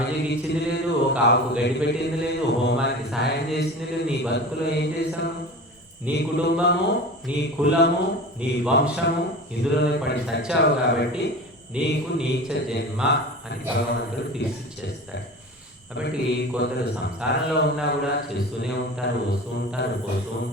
ఇచ్చింది లేదు, ఒక ఆవుకు గడ్డి పెట్టింది లేదు, హోమానికి సహాయం చేసింది లేదు. నీ బతుకులో ఏం చేశాను? నీ కుటుంబము, నీ కులము, నీ వంశము ఇందులోనే పడి సచ్చావు కాబట్టి నీకు నీచ జన్మ అని భగవంతుడు తీర్చిచ్చేస్తాడు. కాబట్టి కొందరు సంసారంలో ఉన్నా కూడా చేస్తూనే ఉంటారు, వస్తూ ఉంటారు, పోతూ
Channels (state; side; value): normal; both; correlation 0.33